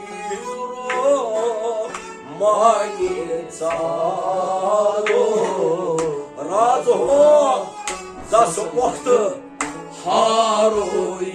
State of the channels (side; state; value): both; identical; correlation 1.00